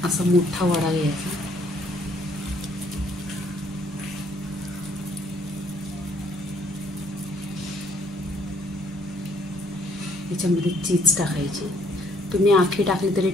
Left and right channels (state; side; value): normal; both; correlation 0.63